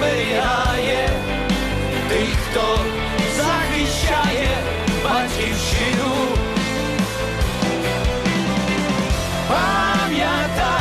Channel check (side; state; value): both; identical; correlation 1.00